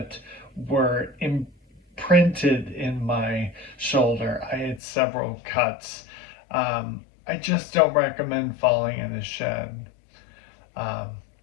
were imprinted in my shoulder. I had several cuts. I just don't recommend falling in a shed. Um,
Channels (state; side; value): drops out; right; at 4.8 s